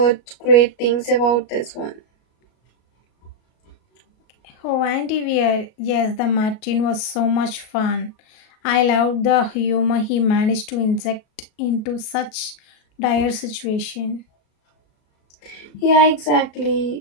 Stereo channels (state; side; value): late; right; 37 ms